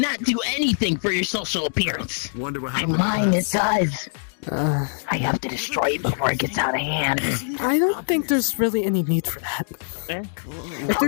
do anything for your social appearance. Wonder what And happened. mine, it does. I have to destroy it before it gets out of hand. I don't think there's really any need for that. How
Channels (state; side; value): silent; right; digital silence